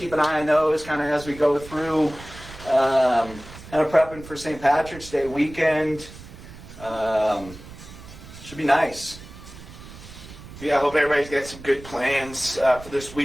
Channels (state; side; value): noise; right; rumble, 16 dB below the sound